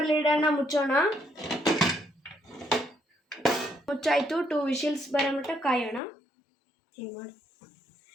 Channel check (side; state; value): right; drops out; at 6.0 s